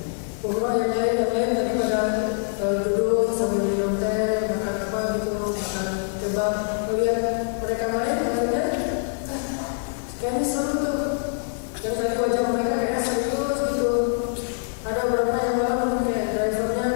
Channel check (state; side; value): silent; right; digital silence